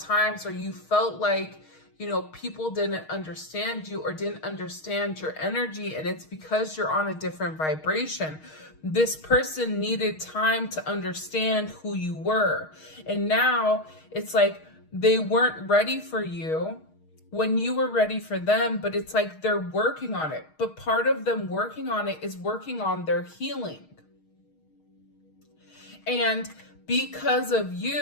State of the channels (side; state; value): right; late; 6.4 ms